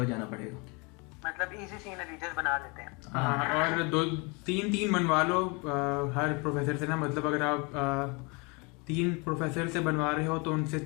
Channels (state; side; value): quieter; right; 29.8 dB